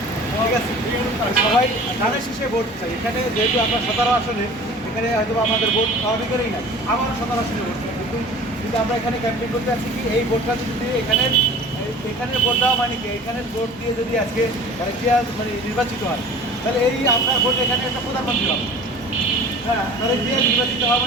ঠিক আছে। সবাই ধানের শীষে ভোট চাই। এখানে যেহেতু আমরা 17 আসনে, এখানে হয়তো আমাদের ভোট অনেকেরই নাই, আমারও 17 আসনে ভোট চাই। কিন্তু আমরা এখানে ক্যাম্পেইন করতে আছি কি এই ভোটটা যদি এখানে ভোট দেওয়া মানে কি, এখানে ভোট দিয়ে যদি আজকে মানে নির্বাচিত হয়, তাহলে এই আপনার ভোট এখানে একটা প্রধানমন্ত্রী হবে। হ্যাঁ, তাহলে দিয়ে নির্বাচিত হওয়া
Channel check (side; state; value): both; normal; correlation 0.43